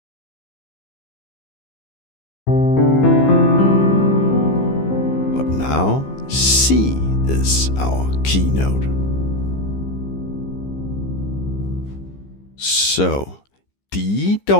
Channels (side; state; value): right; late; 15 ms